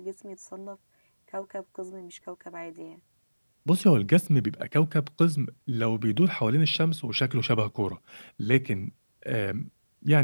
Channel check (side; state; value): both; inverted; correlation -1.00